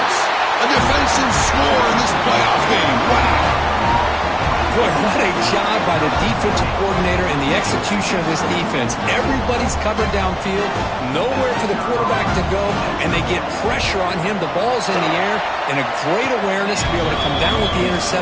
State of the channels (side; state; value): both; identical; correlation 1.00